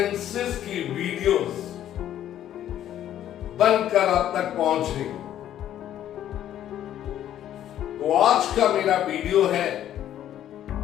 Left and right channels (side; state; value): right; quieter; 11.4 dB